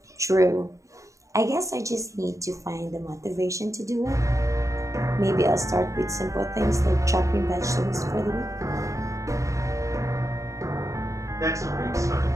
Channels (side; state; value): left; late; 0.15 ms